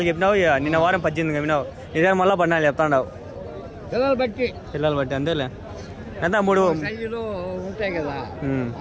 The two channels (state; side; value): identical; both; correlation 1.00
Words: చెప్పినావు, నిన్న వారం 18 చెప్పినావు. ఇదే మళ్ళీ 14 చెప్తాండావు. పిల్లలు బట్టి అంతేలే. ఎంత 3 ఉంటాయి కదా,